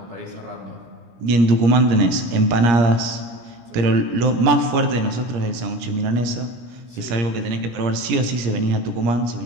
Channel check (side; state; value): left; late; 17 ms